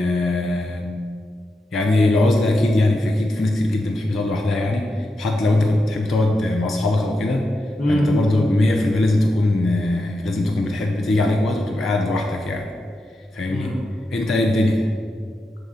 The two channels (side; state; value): both; normal; correlation 0.87